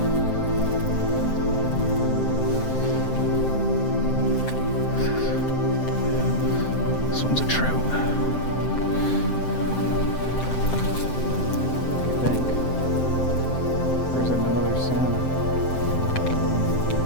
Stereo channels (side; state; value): right; late; 7.7 ms